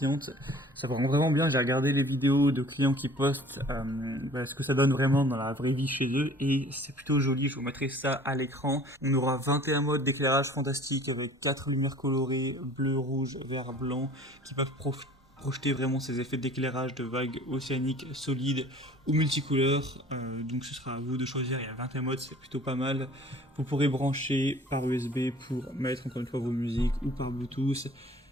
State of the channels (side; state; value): both; normal; correlation 0.49